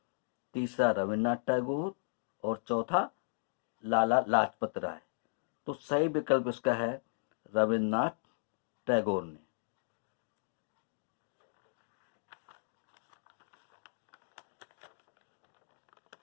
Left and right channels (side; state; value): right; silent; digital silence